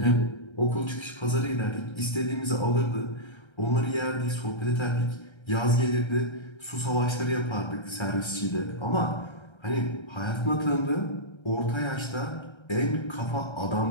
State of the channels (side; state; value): right; late; 1.3 ms